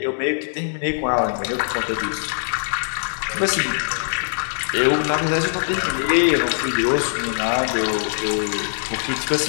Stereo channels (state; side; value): silent; right; digital silence